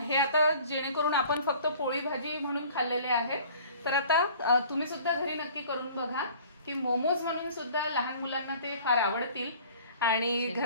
आता जेणेकरून आपण फक्त पोळी भाजी म्हणून खाल्लेले आहेत, तर आता तुम्ही सुद्धा घरी नक्की करून बघा की मोमोज म्हणून सुद्धा लहान मुलांना ते फार आवडतील आणि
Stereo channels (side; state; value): both; inverted; correlation -0.49